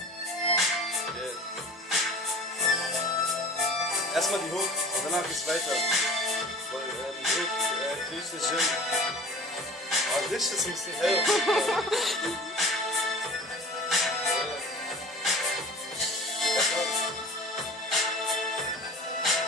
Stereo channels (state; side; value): normal; both; correlation 0.41